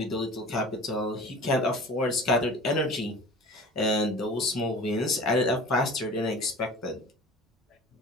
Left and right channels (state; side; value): normal; both; correlation 0.40